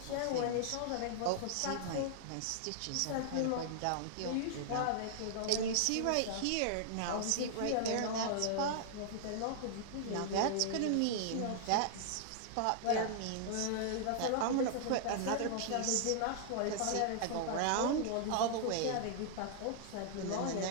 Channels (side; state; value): both; different; correlation -0.01